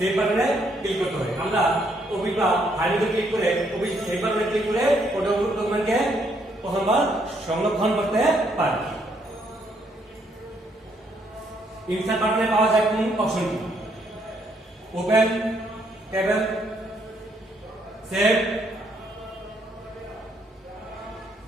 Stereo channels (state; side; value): normal; both; correlation 0.71